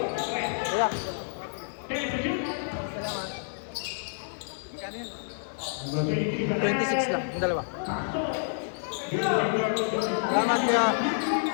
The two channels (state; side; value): silent; right; 59 dB below the other